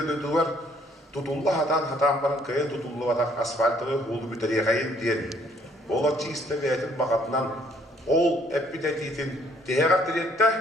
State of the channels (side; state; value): both; normal; correlation 0.63